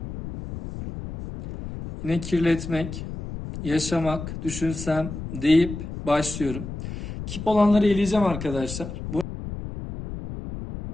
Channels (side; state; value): left; noise; rumble, 8 dB below the sound